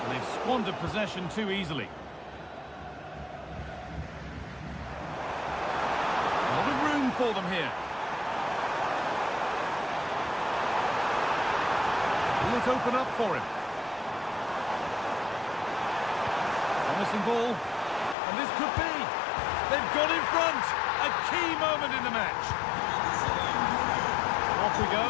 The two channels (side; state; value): right; drops out; at 18.2 s